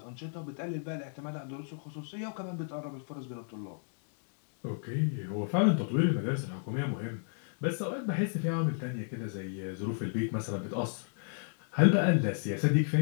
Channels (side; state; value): right; silent; digital silence